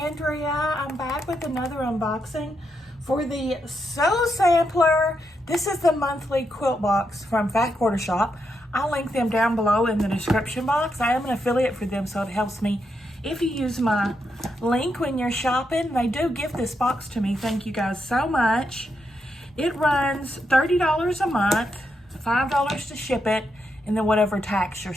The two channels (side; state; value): both; normal; correlation 0.82